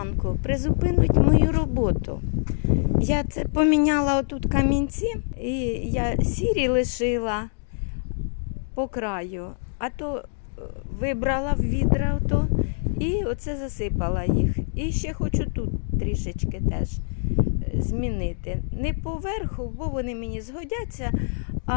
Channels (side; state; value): right; silent; digital silence